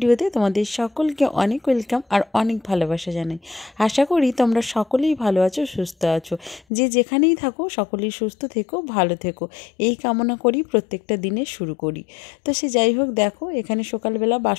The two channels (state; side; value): drops out; right; at 6.6 s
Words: তোমাদের সকলকে অনেক ওয়েলকাম আর অনেক ভালোবাসা জানাই। আশা করি তোমরা সকলেই ভালো আছো, সুস্থ আছো। যে যেখানেই থাকো সকলেই সুস্থ থেকো, ভালো থেকো, এই কামনা করি প্রত্যেকটা দিনে শুরু করি। তো সে যাই হোক, দেখো এখানে সকালবেলা